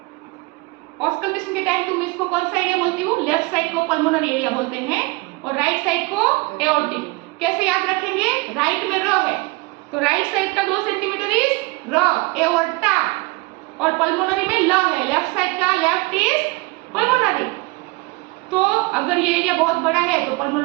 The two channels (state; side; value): quieter; left; 24.8 dB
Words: ऑस्कल्टेशन के टाइम तुम इसको कौन सा एरिया बोलती हो? लेफ्ट साइड को पल्मोनरी एरिया बोलते हैं, और राइट साइड को एओर्टिक। कैसे याद रखेंगे? राइट में र है, तो राइट साइड का 2 सेंटीमीटर इज र, एओर्टा, और पल्मोनरी में ल है, लेफ्ट साइड का लेफ्ट इज पल्मोनरी। तो अगर ये एरिया बहुत बड़ा है तो